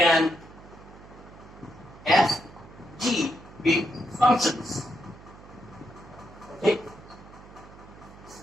f, g be functions. Okay?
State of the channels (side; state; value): right; noise; hum, 19 dB below the sound